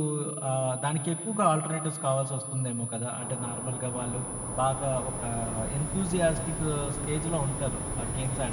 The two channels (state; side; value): identical; both; correlation 1.00